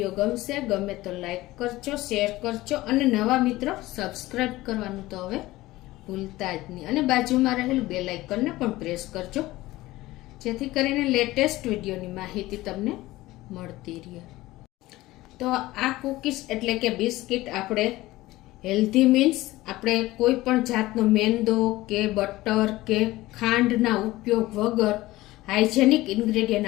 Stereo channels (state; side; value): quieter; right; 18.0 dB